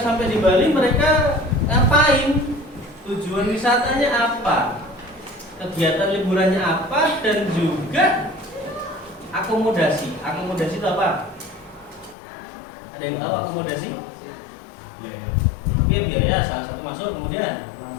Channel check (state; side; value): drops out; right; at 12.2 s